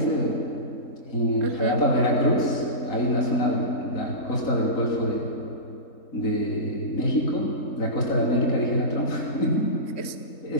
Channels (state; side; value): late; right; 3.7 ms